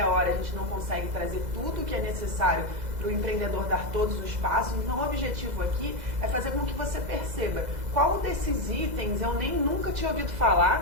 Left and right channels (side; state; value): left; late; 2.0 ms